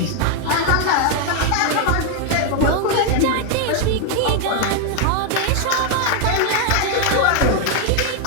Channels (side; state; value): both; different; correlation 0.01